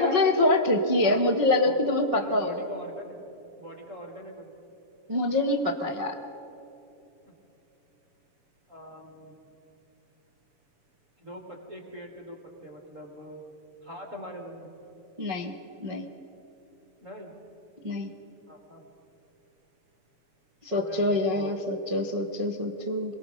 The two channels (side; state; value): left; late; 7.0 ms